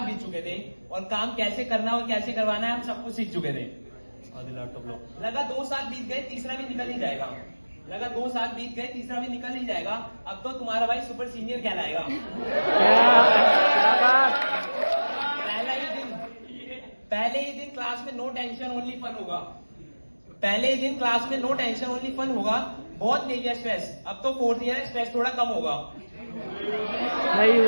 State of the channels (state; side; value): inverted; both; correlation -1.00